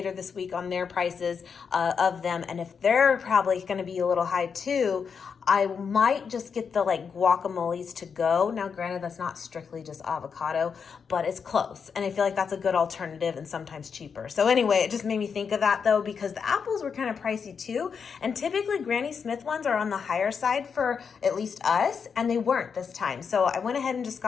this week on their prices of them, and if they're probably gonna be a little high too, I might just get the like guacamoles to go. Now, granted, that's not strictly just avocado, but it's close. And I feel like that's a good alternative and sometimes cheaper. So anyway, it just made me think of that though, because the apples were kind of pricey too. And typically Granny Smith ones are on the higher side for at least us, and they weren't this time. So I went ahead and just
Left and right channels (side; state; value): right; quieter; 6.2 dB